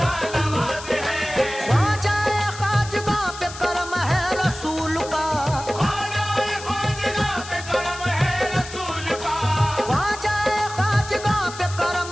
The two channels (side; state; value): left; noise; hiss, 13 dB below the sound